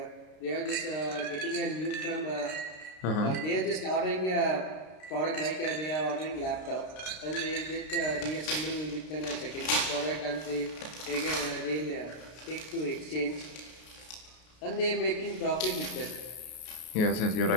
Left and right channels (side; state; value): right; late; 33 ms